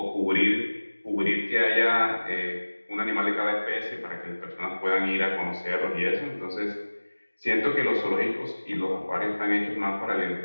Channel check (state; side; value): inverted; both; correlation -1.00